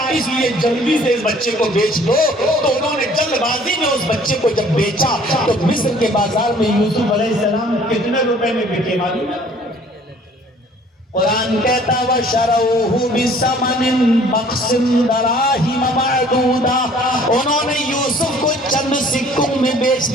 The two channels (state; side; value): normal; both; correlation 0.55